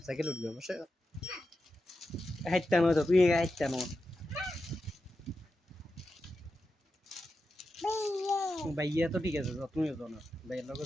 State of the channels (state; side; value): normal; both; correlation 0.90